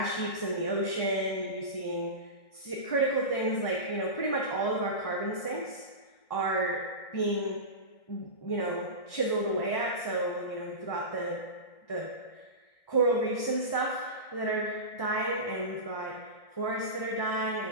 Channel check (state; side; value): late; right; 1.6 ms